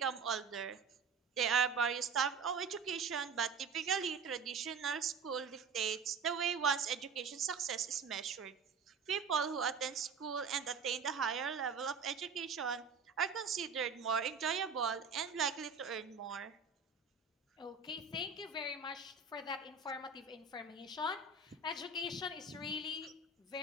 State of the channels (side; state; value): left; quieter; 5.1 dB